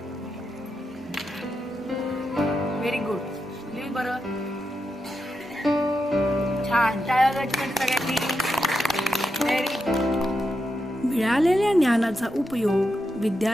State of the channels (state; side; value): normal; both; correlation 0.86